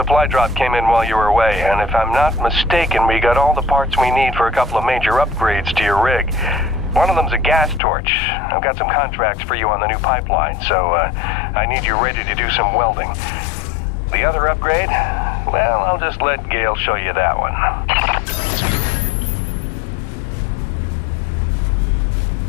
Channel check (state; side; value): drops out; right; at 7.8 s